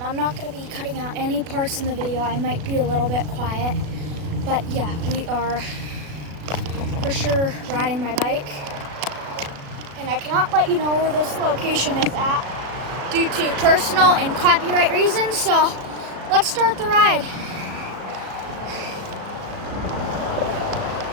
not going to be cutting out any parts in the video. I might be a little bit quiet. But yeah, we are for sure riding my bike. And I cannot let you know where this location is at due to personal and copyright reasons. So, let's start the ride.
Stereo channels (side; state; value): left; late; 37 ms